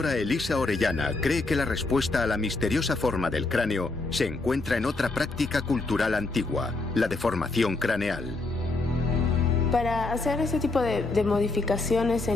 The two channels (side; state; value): right; quieter; 3.4 dB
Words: Elisa Orellana cree que la respuesta a la misteriosa forma del cráneo se encuentra en otra práctica cultural antigua, la deformación craneal. Para hacer ese tipo de modificaciones